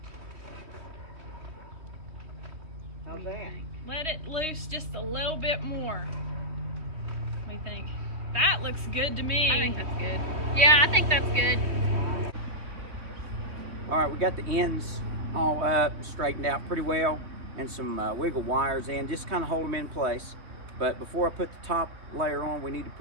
How's that? Let it loose just a little bit more. What do you think? That looks good to me. I think that's good. Yeah, I think that's good. All right, we got the ends all up, straightened out pretty well, and some wiggle wires in, just kind of hold them in place. But before I put the top layer on, we need to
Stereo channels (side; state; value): left; late; 3.2 ms